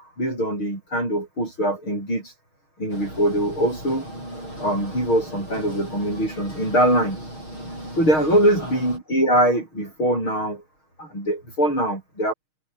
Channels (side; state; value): right; late; 6.4 ms